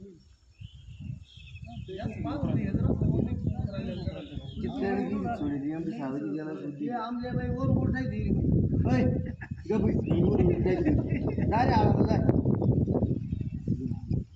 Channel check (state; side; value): identical; both; correlation 1.00